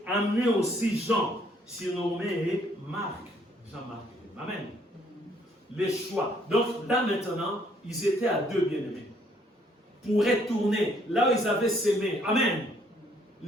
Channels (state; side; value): normal; both; correlation 0.66